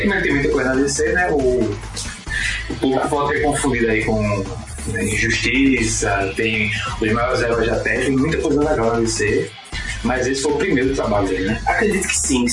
como ele tem muita coisa na DC, né, o público pode ter confundido aí com Injustiça, tem os maiores heróis da Terra, tem muita coisa legal na DC, mas esse foi o primeiro trabalho dele, né? Acredito que sim, que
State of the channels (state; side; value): identical; both; correlation 1.00